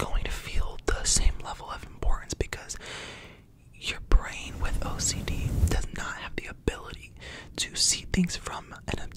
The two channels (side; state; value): both; identical; correlation 1.00